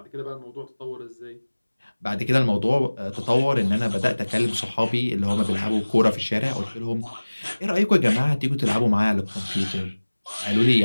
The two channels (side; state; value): both; inverted; correlation -1.00